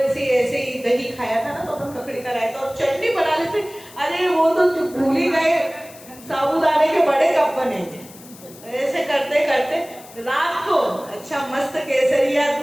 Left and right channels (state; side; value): noise; left; hiss, 20 dB below the sound